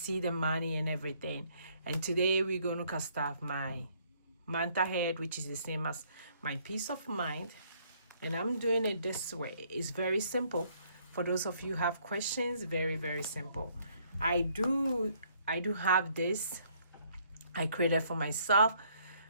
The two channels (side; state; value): both; inverted; correlation -0.65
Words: the money and everything. And today we're going to cast off my month ahead, which is the same as my peace of mind. And I'm doing it this way. It's very simple. For those of you who have questions, very, very simple. I do have this I created for myself,